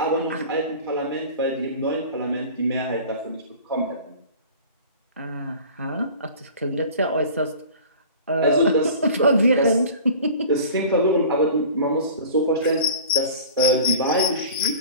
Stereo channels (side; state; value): both; inverted; correlation -0.41